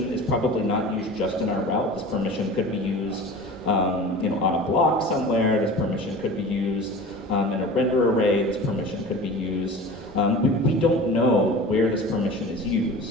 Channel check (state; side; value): normal; both; correlation 0.37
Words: is probably not used just in our route. This permission could be used on a block somewhere. This permission could be used in a render array. This permission could be used. We don't know where this permission is